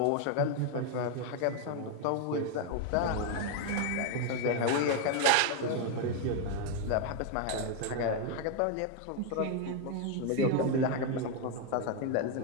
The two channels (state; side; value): different; both; correlation 0.01